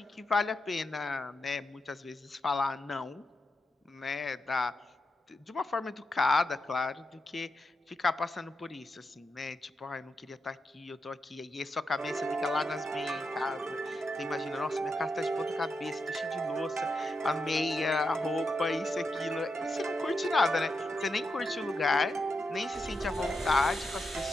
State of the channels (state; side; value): normal; both; correlation 0.86